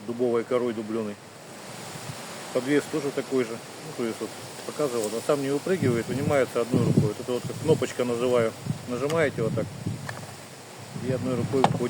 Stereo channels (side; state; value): both; identical; correlation 1.00